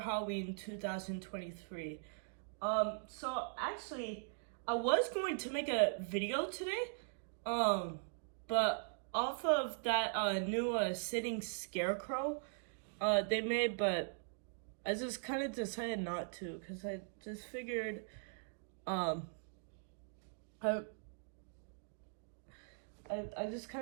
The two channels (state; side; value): silent; left; digital silence